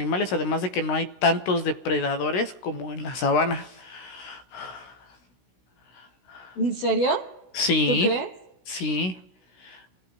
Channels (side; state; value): right; late; 16 ms